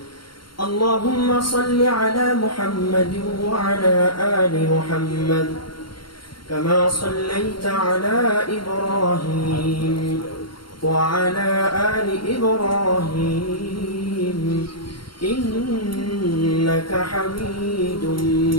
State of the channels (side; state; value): right; late; 0.73 ms